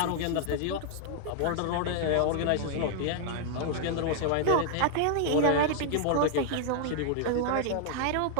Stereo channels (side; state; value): both; different; correlation -0.01